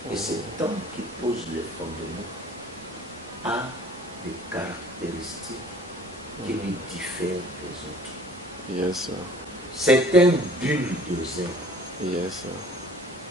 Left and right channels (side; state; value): both; normal; correlation 0.51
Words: Et cet homme qui pose les fondements a des caractéristiques qui lui diffèrent des autres. C'est un bulldozer.